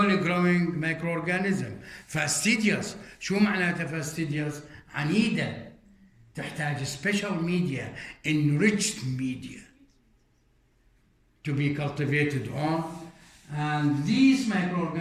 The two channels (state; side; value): identical; both; correlation 1.00